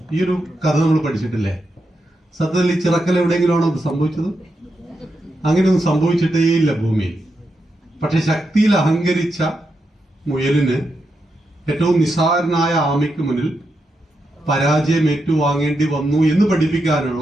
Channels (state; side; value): normal; both; correlation 0.85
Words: ഈ ഒരു കഥ നമ്മൾ പഠിച്ചിട്ടില്ലേ? സത്യത്തിൽ ഈ ചിറക്കൽ എവിടെയെങ്കിലുമാണോ ഇത് സംഭവിച്ചത്? അങ്ങനെയൊന്നും സംഭവിച്ചിട്ടേ ഇല്ല ഭൂമിയിൽ. പക്ഷെ ശക്തിയിൽ അഹങ്കരിച്ച മുയലിന് ഏറ്റവും നിസ്സാരനായ ആമയ്ക്ക് മുന്നിൽ പരാജയം ഏറ്റുവാങ്ങേണ്ടി വന്നു എന്ന്